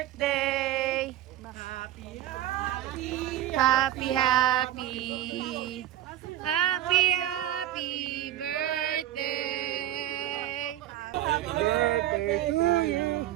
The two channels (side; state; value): left; quieter; 13.2 dB